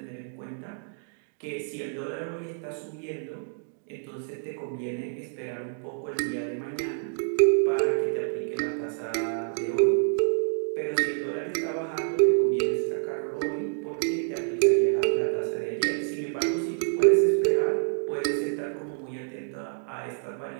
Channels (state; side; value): silent; left; digital silence